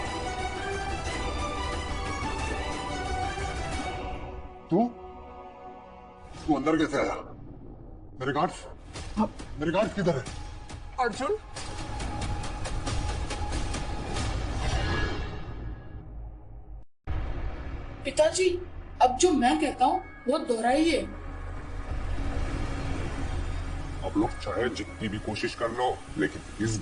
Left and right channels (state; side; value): identical; both; correlation 1.00